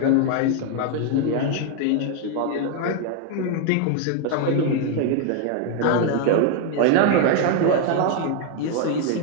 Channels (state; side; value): different; both; correlation 0.01